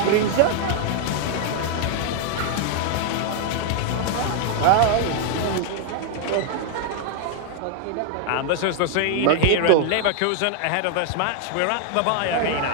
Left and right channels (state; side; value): different; both; correlation 0.00